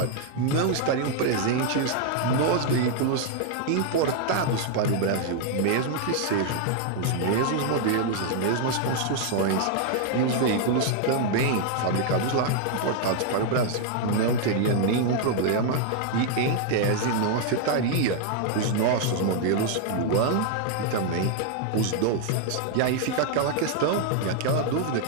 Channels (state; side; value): different; both; correlation 0.00